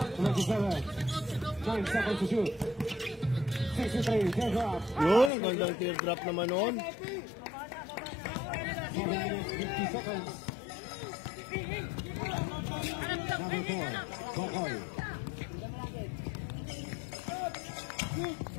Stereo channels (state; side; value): drops out; right; at 5.3 s